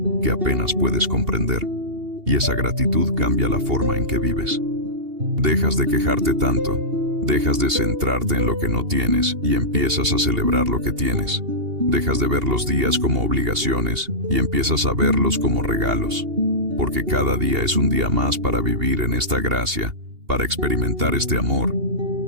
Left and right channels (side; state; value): left; late; 2.8 ms